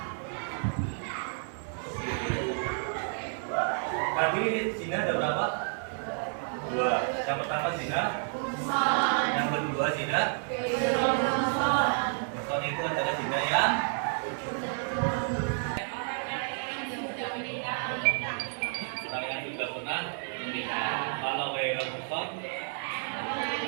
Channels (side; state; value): left; silent; 57 dB below the other